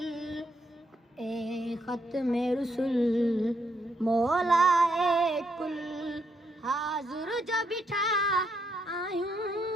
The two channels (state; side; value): normal; both; correlation 0.77